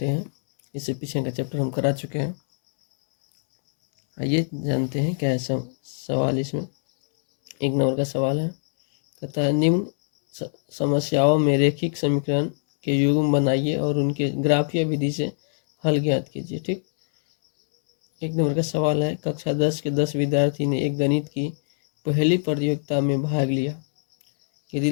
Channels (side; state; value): right; silent; 63 dB below the other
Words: हैं। इससे पीछे का चैप्टर हम करा चुके हैं। आइए जानते हैं क्या है सवाल। इसमें 1 नंबर का सवाल है, कहता है निम्न समस्याओं में रैखिक समीकरण के युग्म बनाइए और उनके ग्राफीय विधि से हल ज्ञात कीजिए। ठीक, 1 नंबर का सवाल है, कक्षा 10 के 10 विद्यार्थी ने एक गणित की पहली प्रतियोगिता में भाग लिया। यदि